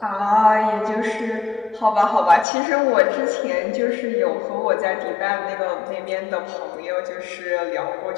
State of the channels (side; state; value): right; drops out; at 2.5 s